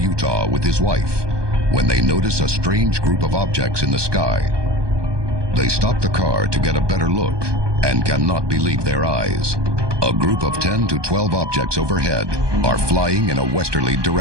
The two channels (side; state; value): left; late; 1.2 ms